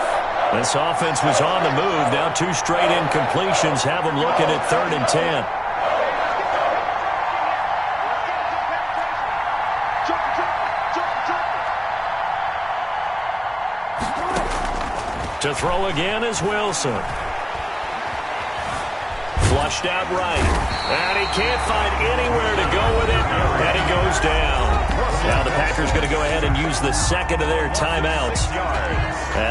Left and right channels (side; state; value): both; identical; correlation 1.00